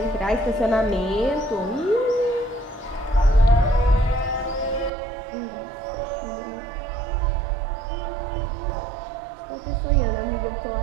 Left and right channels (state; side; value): drops out; left; at 4.9 s